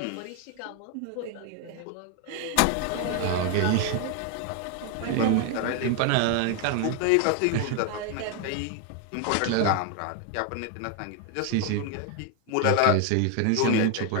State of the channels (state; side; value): different; both; correlation 0.00